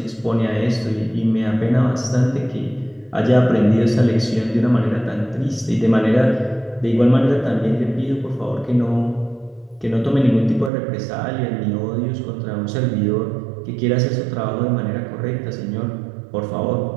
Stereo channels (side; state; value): left; drops out; at 10.7 s